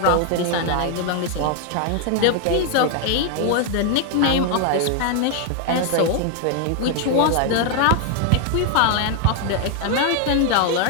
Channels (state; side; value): different; both; correlation 0.00